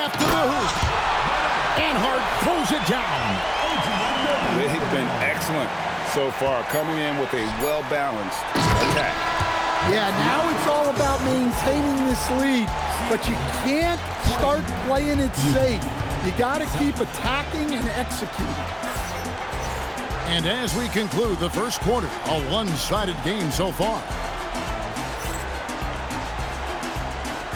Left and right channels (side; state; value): both; identical; correlation 1.00